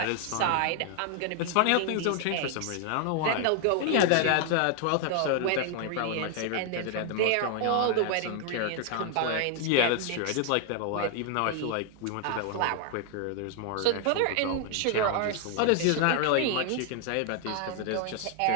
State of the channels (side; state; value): both; different; correlation 0.00